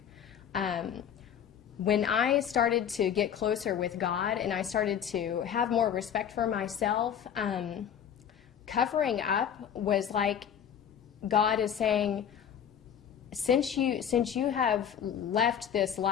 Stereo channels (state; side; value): quieter; right; 8.6 dB